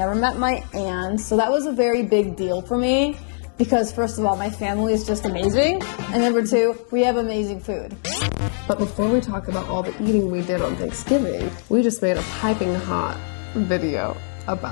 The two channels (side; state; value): right; silent; digital silence